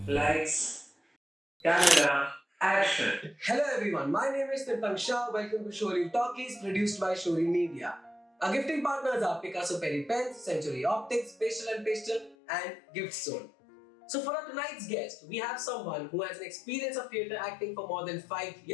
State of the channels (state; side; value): drops out; right; at 12.4 s